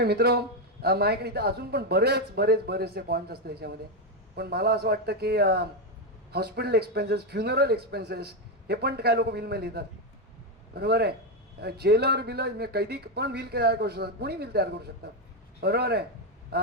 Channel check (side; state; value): both; normal; correlation 0.07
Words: मित्र, माझ्याकडे इथं अजून पण बरेचसे पॉईंट्स असतात याच्यामध्ये. पण मला असं वाटतं की हॉस्पिटल एक्सपेन्सेस, फ्युनरल एक्सपेन्सेस हे पण काय लोक व्हीलमध्ये लिहितात. बरोबर आहे. जेलर बिलर कैदी पण व्हील तयार करू शकतात, कोणी व्हील तयार करू शकतात. बरोबर आहे.